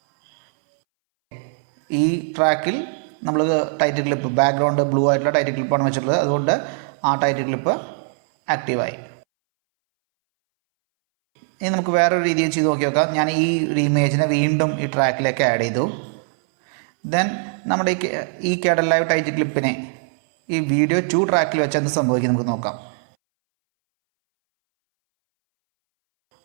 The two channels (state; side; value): silent; left; 64 dB below the other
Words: ഈ ട്രാക്കിൽ നമ്മൾ ടൈറ്റിൽ ക്ലിപ്പ് ബാക്ക്ഗ്രൗണ്ട് ബ്ലൂ ആയിട്ടുള്ള ടൈറ്റിൽ ക്ലിപ്പാണ് വെച്ചിട്ടുള്ളത്. അതുകൊണ്ട് ആ ടൈറ്റിൽ ക്ലിപ്പ് ആക്റ്റീവായി. ഇനി നമുക്ക് വേറൊരു രീതിയിൽ ചെയ്ത് നോക്കാം. ഞാൻ ഈ ഇമേജിനെ വീണ്ടും ഈ ട്രാക്കിലേക്ക് ആഡ് ചെയ്തു. ദെൻ നമ്മുടെ ഈ KEDENLIVE ടൈറ്റിൽ ക്ലിപ്പിനെ ഈ വീഡിയോ 2 ട്രാക്കിൽ വെച്ച് എന്ത് സംഭവിക്കും നമുക്ക് നോക്കാം.